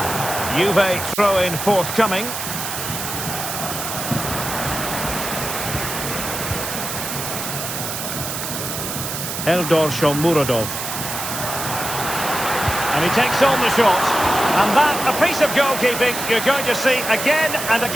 Juve throw-in forthcoming. Eldor Shomurodov. And he takes on the shot. And that, a piece of goalkeeping you're going to see again and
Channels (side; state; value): right; noise; hiss, 5 dB below the sound